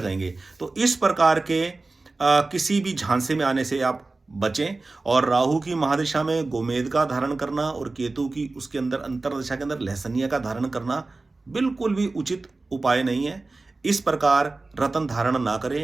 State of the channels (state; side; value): quieter; left; 3.4 dB